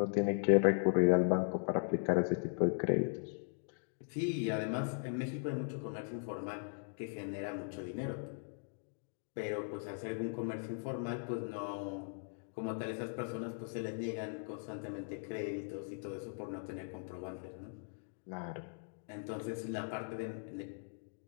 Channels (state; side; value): silent; right; digital silence